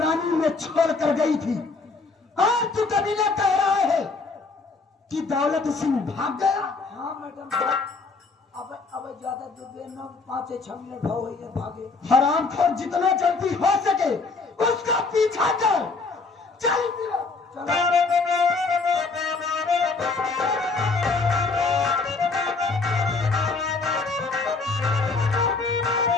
में छोड़ कर गई थी और तू कभी न कह रहा है कि दौलत सिंह भाग गया। हाँ मैडम भाग। अब ज्यादा दूर न 5-6 मिनट हो गई है भागे। हरामखोर, जितना जल्दी हो सके उसका पीछा कर। चल चलो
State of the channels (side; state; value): right; quieter; 4.1 dB